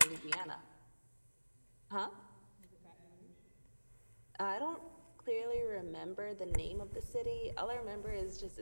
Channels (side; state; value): both; inverted; correlation -1.00